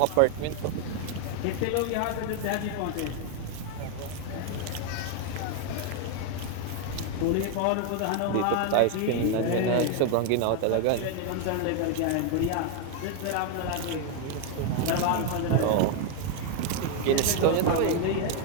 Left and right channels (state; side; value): different; both; correlation 0.00